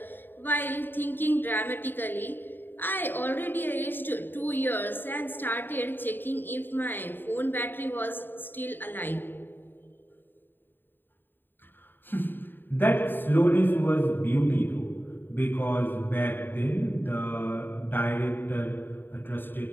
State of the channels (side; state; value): right; late; 0.095 ms